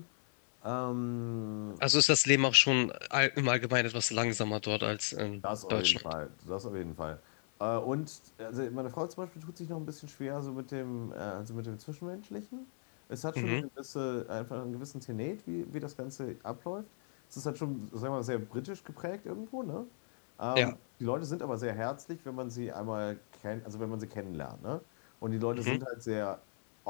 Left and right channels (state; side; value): silent; right; 54 dB below the other